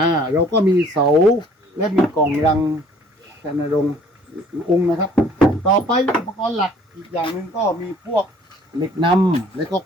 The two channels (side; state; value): both; normal; correlation 0.56